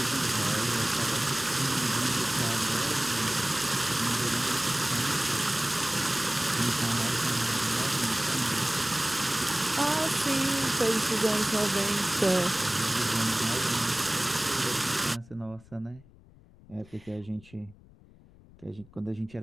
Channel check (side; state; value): left; noise; rumble, 24 dB below the sound